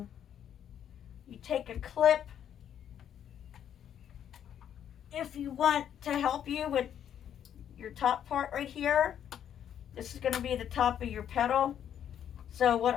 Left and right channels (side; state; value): right; quieter; 9.6 dB